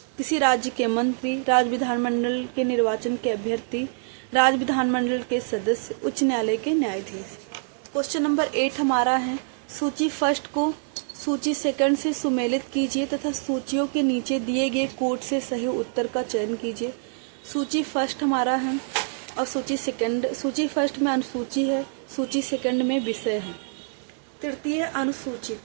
किसी राज्य के मंत्री, राज्य विधानमंडल के निर्वाचन के अभ्यर्थी, राज्य विधानमंडल के सदस्य, उच्च न्यायालय के न्यायाधीश। क्वेश्चन नंबर 8 हमारा है, सूची फर्स्ट को सूची सेकंड से सुमेलित कीजिए तथा सूचियों के नीचे दिए गए कोड से सही उत्तर का चयन कीजिए। सूची फर्स्ट हमारा है और सूची फर्स्ट में अनुसूची है, सूची सेकंड में विषय है। तृतीय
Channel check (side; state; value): left; silent; digital silence